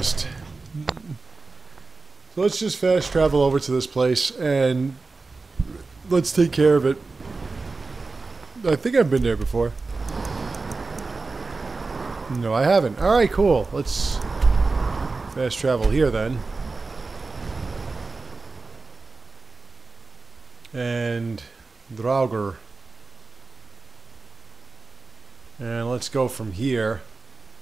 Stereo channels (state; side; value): quieter; left; 3.8 dB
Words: So let's just fast travel over to this place and let's take care of it. I think I've been there before. No, I haven't. Alright, cool. Let's fast travel here then. And Draugr. And let's go from here.